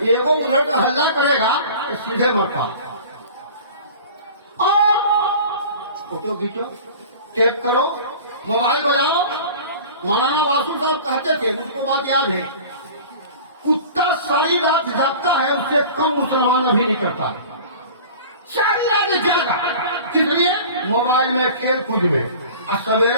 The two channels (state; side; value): inverted; both; correlation -0.40